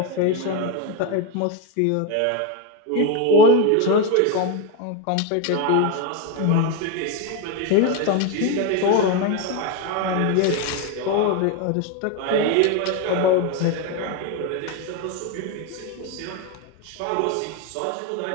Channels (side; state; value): both; different; correlation 0.03